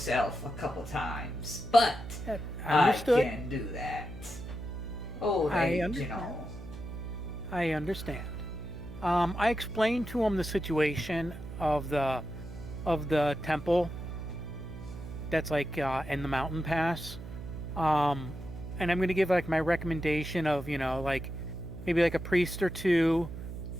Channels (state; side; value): noise; right; hum, 9 dB below the sound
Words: a couple times, but Understood. I can do that. Oh, I hey, understand. I understand. I explained to him the situation of the temple that's like in the mountain pass, and I'm gonna give like my recommendation of like maybe like a priest or two,